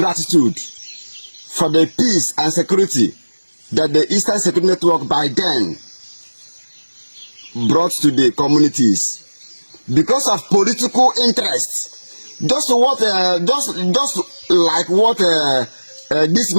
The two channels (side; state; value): both; inverted; correlation -1.00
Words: for the peace and security that the Eastern Security Network by then brought to the communities. Because of political interest, just like what this